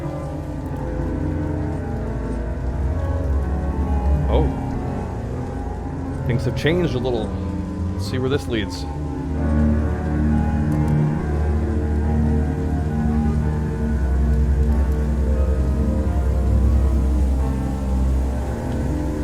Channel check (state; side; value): identical; both; correlation 1.00